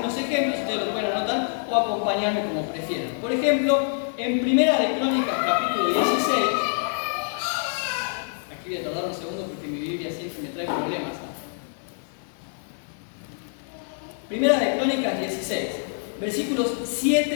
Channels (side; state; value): right; silent; 57 dB below the other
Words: ejemplos, ustedes lo pueden anotar o acompañarme como prefieran. Por ejemplo, en Primera de Crónicas, capítulo 16, aquí voy a tardar un segundo porque mi Biblia siempre me trae problemas. Primera de Crónicas 16, versículos